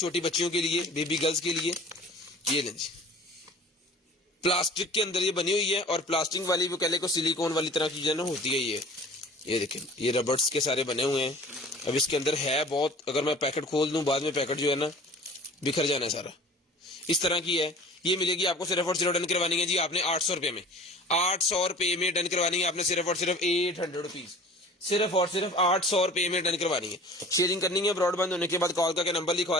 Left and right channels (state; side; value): normal; both; correlation 0.44